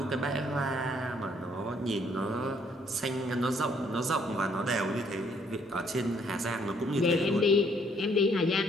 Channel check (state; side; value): normal; both; correlation 0.66